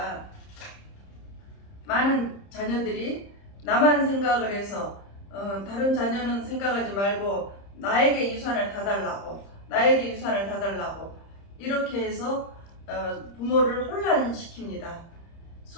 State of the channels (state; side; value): late; right; 30 ms